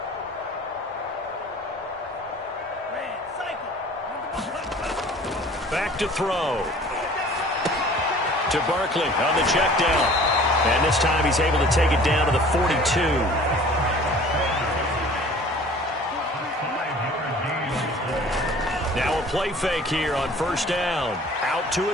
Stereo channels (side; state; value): both; normal; correlation 0.48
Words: Back to throw. To Barkley on the check down. And this time he's able to take it down to the 42. Now a play fake here on first down. Out to